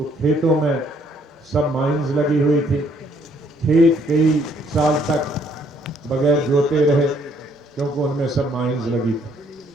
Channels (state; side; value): normal; both; correlation 0.66